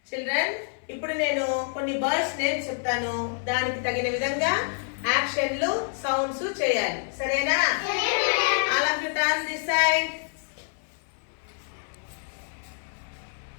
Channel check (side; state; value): right; silent; 60 dB below the other